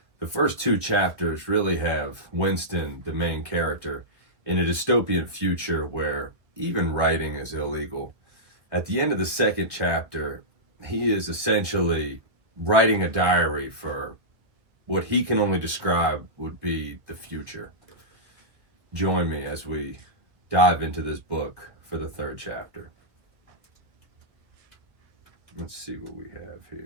The first two chapters really have Winston, the main character, in a dystopian future where even writing is illegal. At the end of the second chapter, he is essentially writing a diary for what he can only describe would be the future. Join me as we dive into this book for the third chapter. Let's see what we have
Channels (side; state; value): left; late; 1.6 ms